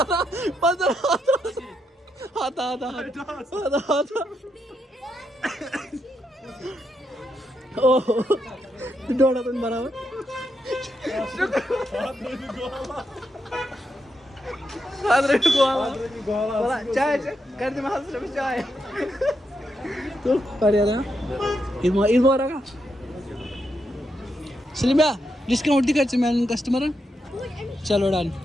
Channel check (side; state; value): both; normal; correlation 0.82